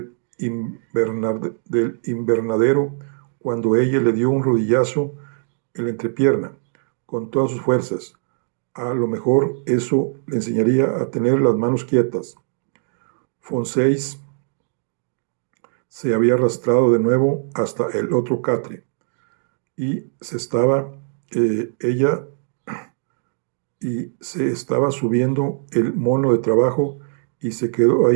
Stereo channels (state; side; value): silent; left; digital silence